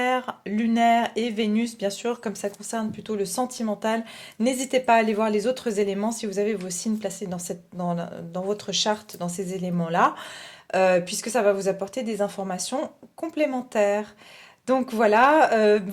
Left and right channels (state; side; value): identical; both; correlation 1.00